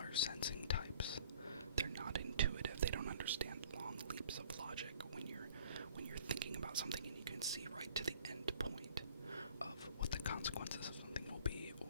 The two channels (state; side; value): inverted; both; correlation -0.53